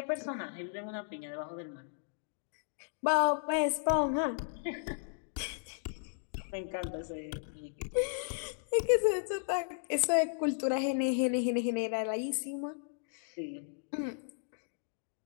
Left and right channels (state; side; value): silent; right; digital silence